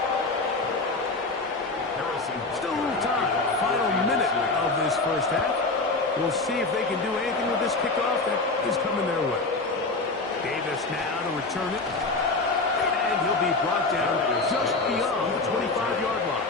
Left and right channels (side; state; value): right; quieter; 3.5 dB